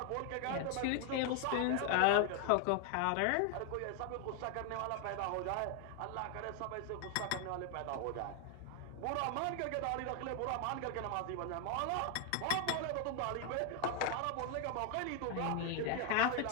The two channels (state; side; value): different; both; correlation 0.00